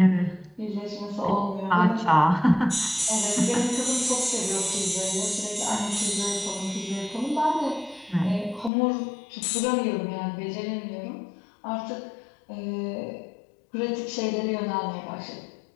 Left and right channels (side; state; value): right; drops out; at 8.7 s